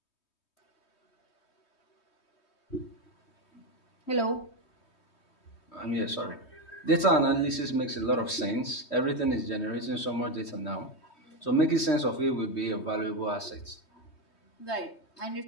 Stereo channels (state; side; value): late; right; 3.2 ms